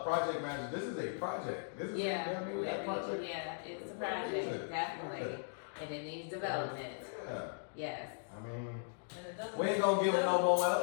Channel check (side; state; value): right; silent; digital silence